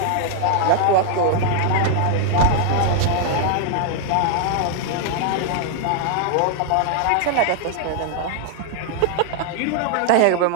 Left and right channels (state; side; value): different; both; correlation 0.00